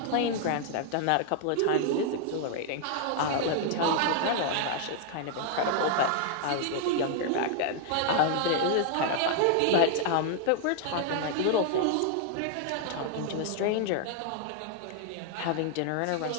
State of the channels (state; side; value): different; both; correlation 0.00